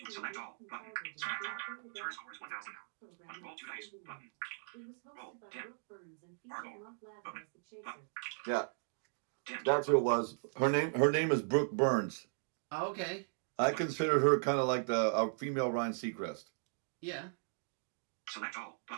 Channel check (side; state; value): left; silent; digital silence